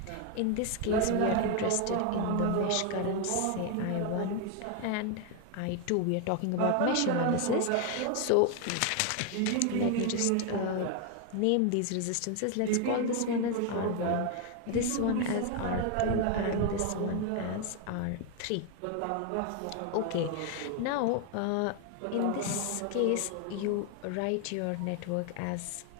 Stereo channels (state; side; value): different; both; correlation 0.01